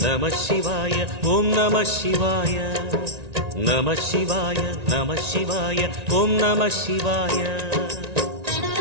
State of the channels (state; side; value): late; left; 1.9 ms